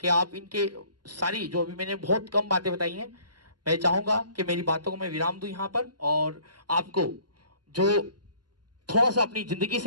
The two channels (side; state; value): left; late; 0.70 ms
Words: कि आप इनके सारी जो अभी मैंने बहुत कम बातें बताई हैं, मैं चाहूंगा कि मेरी बातों को मैं विराम दूं यहाँ पर और आपको जो थोड़ा सा अपनी जिंदगी